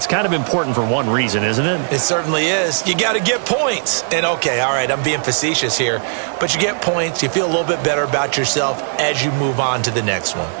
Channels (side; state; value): left; silent; digital silence